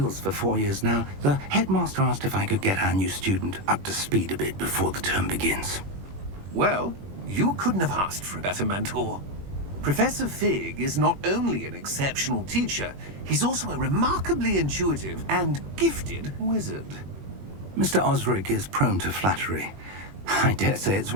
for 4 years now, the headmaster asked if I could get our new student up to speed a bit before the term begins. Well, you couldn't have asked for a better mentor. Professor Fig is not only an exceptional teacher, he's also a remarkably intuitive and gifted wizard. Mr. Osric is prone to flattery. I dare say it's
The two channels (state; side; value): late; left; 21 ms